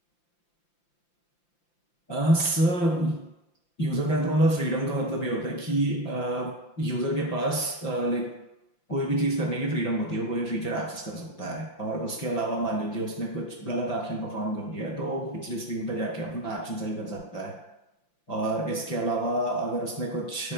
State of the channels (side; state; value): right; late; 5.8 ms